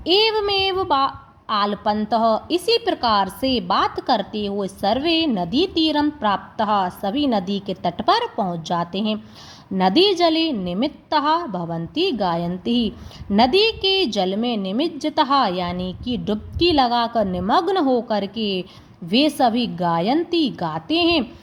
एवमेव आलपन्तः, इसी प्रकार से बात करते हुए सर्वे नदी तीरम प्राप्तः, सभी नदी के तट पर पहुंच जाते हैं। नदी जले निमित्तः भवन्ति गायन्ति, नदी के जल में निमज्जितः यानी कि डुबकी लगाकर निमग्न होकर के वे सभी गायन्ति गाते हैं।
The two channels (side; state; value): both; identical; correlation 1.00